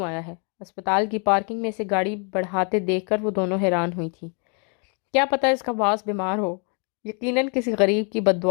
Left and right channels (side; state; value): right; quieter; 37.7 dB